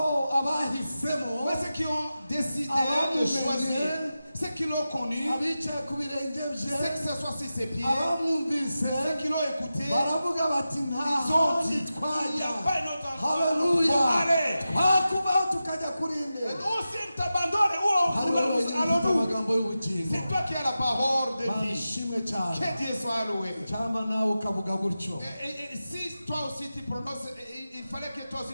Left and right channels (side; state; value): both; inverted; correlation -0.92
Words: abahisemo, Mais ceux qui ont décidé Abamumenye, de choisir, ceux qui l'ont connu, abicaye ku birenge ceux bye, qui s'assoient sur ses pieds, abamwumvise, ceux qui l'ont écouté, baravuga bati ils nta ont handi dit, il n'y twajya. a pas une autre endroit Haleluya. pour aller. Twakubaho tukajya kuri Et nde? Ou si t'abandonnes, où Hariho wenyine ufite allons-nous? amagambo y'ubugingo. C'est toi qui as la parole de Mana vie. ishimwe cyane. Que Dieu soit loué. Cyangwa nawe ukavuga gutyo. Et si toi aussi tu prononces, il fallait que toi